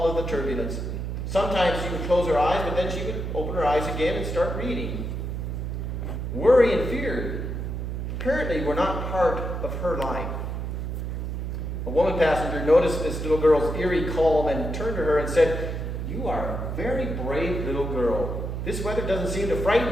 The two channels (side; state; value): right; noise; hum, 4 dB below the sound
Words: of the turbulence. Sometimes she would close her eyes, but then she would open her eyes again and start reading. Worry and fear apparently were not part of her life. A woman passenger noticed this little girl's eerie calm and turned to her and said, "You are a very brave little girl. This weather doesn't seem to